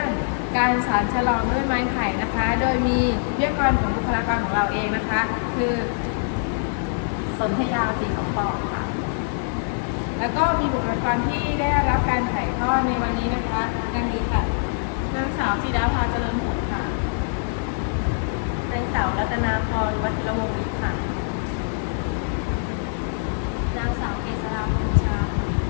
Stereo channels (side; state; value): right; silent; 63 dB below the other